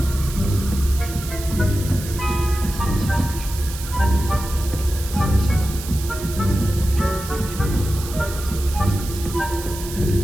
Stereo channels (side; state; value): right; noise; hiss, 12 dB below the sound